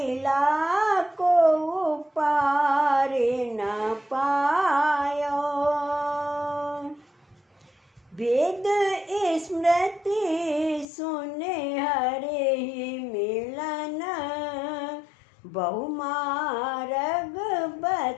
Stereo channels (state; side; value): drops out; right; at 10.9 s